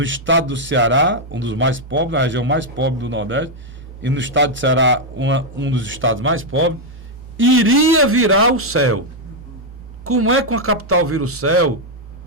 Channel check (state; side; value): normal; both; correlation -0.01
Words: estado do Ceará, um dos mais pobres, na região mais pobre do Nordeste, e no estado do Ceará, um dos estados mais pobres, iria virar o céu. Como é que uma capital vira o céu